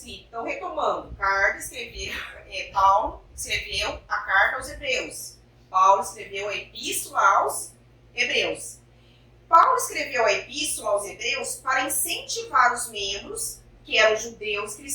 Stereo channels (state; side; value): identical; both; correlation 1.00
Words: Então, retomando, Paulo escreveu a carta aos Hebreus. Paulo escreveu a epístola aos Hebreus. Paulo escreveu a epístola aos Hebreus para incentivar os membros, que eram judeus